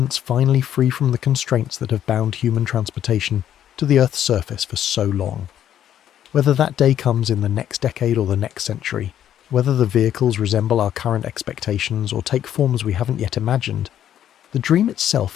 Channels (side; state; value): right; quieter; 10.6 dB